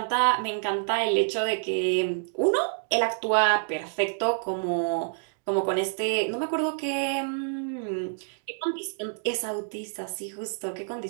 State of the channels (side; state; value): left; silent; digital silence